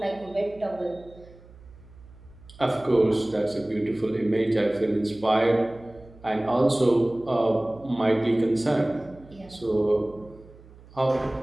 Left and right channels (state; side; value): noise; right; hum, 22 dB below the sound